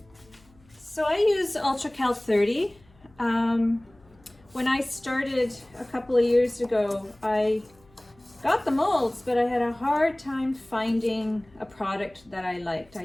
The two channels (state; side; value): noise; left; hum, 29 dB below the sound